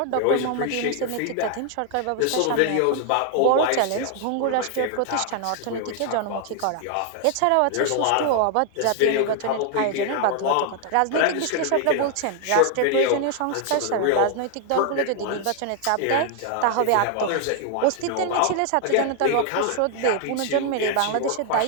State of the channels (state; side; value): different; both; correlation 0.00